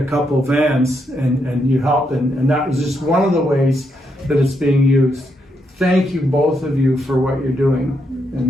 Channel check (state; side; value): normal; both; correlation 0.79